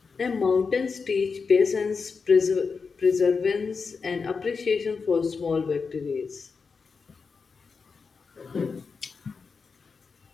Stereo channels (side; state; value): right; quieter; 5.1 dB